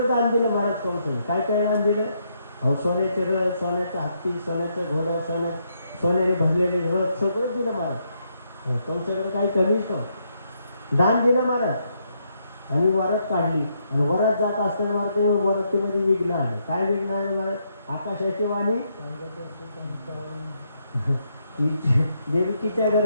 दान दिलं महाराज कंसाने काय दान दिलं अहो सोन्याचे रथ सोन्याचा हत्ती सोन्याचा घोडा सोन्याने भरलेले रथ सगळं दिलं महाराज कंसाकडे काही कमीच नव्हतं दान दिलं महाराज आणि वरात काढली आणि वरात जात असताना महाराज वरातीमध्ये विघ्न आले काय विघ्न आले महाराज आकाशाची वाणी देवकीच्या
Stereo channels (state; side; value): inverted; both; correlation -0.76